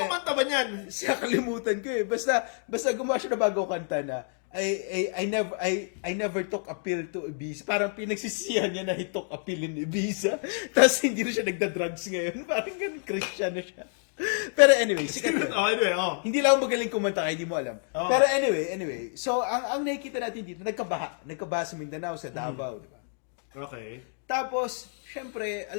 ba niyan? Siya kalimutan ko eh. Basta gumawa siya ng bagong kanta na. I never took a pill to Ibiza. Parang pinagsisihan niya na he took a pill in Ibiza. Tapos hindi na siya nagda-drugs ngayon. Parang ganun, Christian na siya. Pero anyway, hindi lang ako magaling kumanta kaya hindi mo alam. Pero anyway, so ang nakikita natin dito, nagkabaha sa Mindanao, sa Davao, di ba? Okay. Tapos, syempre,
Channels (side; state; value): right; silent; 56 dB below the other